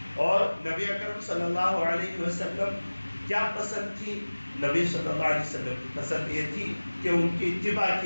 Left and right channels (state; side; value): inverted; both; correlation -1.00